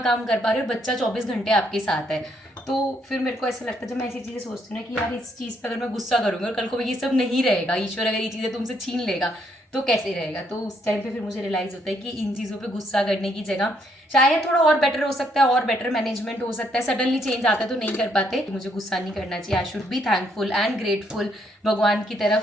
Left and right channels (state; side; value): normal; both; correlation 0.72